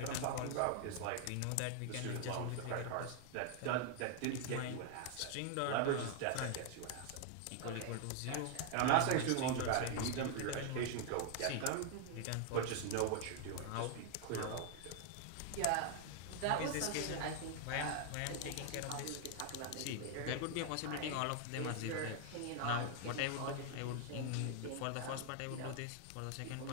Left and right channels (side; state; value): both; different; correlation 0.00